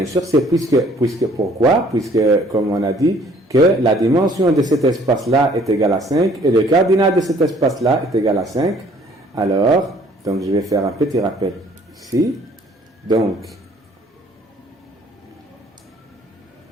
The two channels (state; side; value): normal; both; correlation 0.58